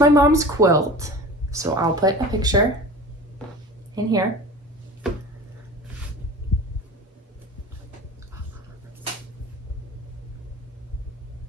mom's quilt, so I'll put a picture in here.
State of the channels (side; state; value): both; normal; correlation 0.36